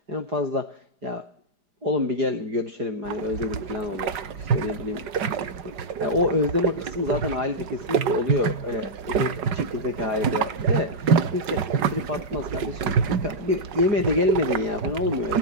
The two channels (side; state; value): left; late; 5.4 ms